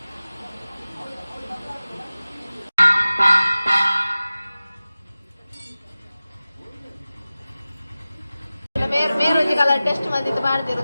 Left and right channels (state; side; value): inverted; both; correlation -0.96